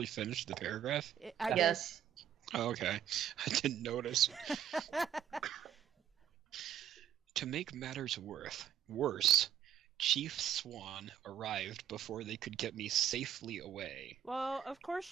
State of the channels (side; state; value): left; quieter; 9.7 dB